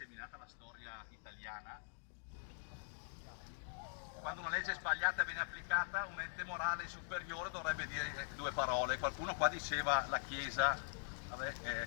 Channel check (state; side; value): silent; right; digital silence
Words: la storia italiana. Quando una legge sbagliata viene applicata, un ente morale superiore dovrebbe dire due parole. Qualcuno qua diceva la Chiesa. Vabbè,